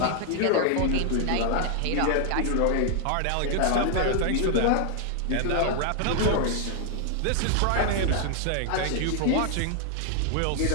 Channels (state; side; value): different; both; correlation 0.00